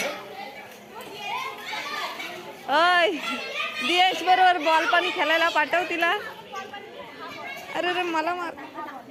अय दियांश बरोबर बॉल पण खेळायला पाठव तिला. अरे रे मला मार.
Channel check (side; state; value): both; identical; correlation 1.00